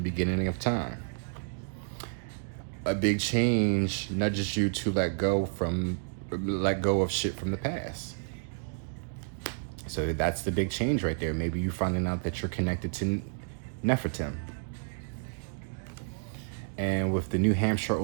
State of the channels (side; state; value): left; silent; digital silence